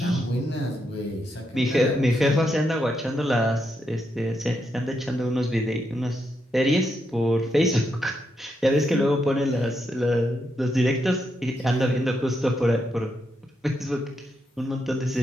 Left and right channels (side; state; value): both; normal; correlation 0.81